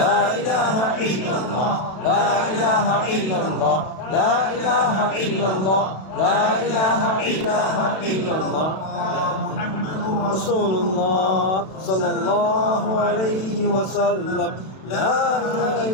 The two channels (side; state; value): right; late; 32 ms